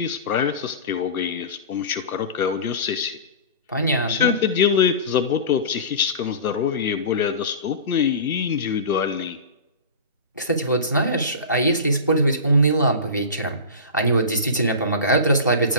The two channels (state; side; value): inverted; both; correlation -0.31